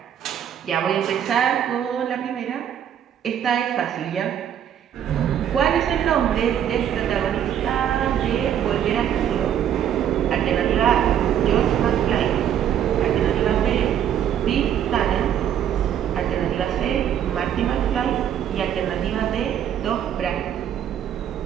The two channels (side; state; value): left; quieter; 9.7 dB